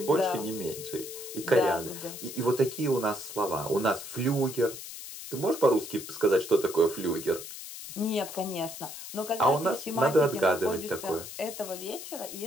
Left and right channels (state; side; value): noise; left; hiss, 11 dB below the sound